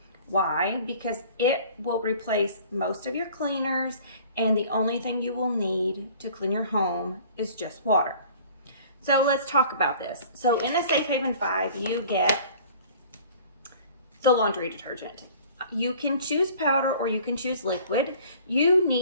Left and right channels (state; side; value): inverted; both; correlation -0.49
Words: Why? Because it will replace most of your cleaners, and the only thing you will need to clean your home is just water. So let's talk about this. So in the Safe Haven 5, you get the laundry detergent. You can choose powder or you can choose liquid. You